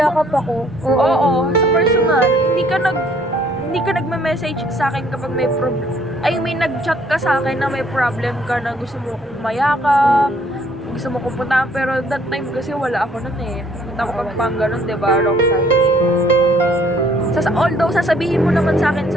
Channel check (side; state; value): both; normal; correlation 0.62